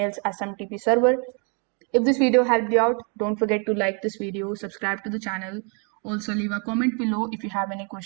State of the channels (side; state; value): left; quieter; 37.4 dB